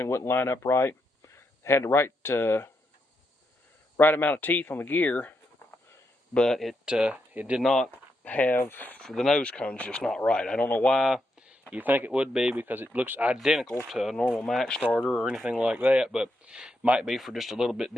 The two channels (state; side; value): normal; both; correlation 0.82